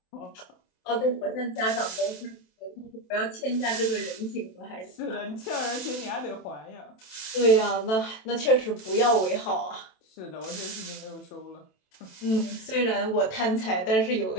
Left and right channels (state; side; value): late; right; 27 ms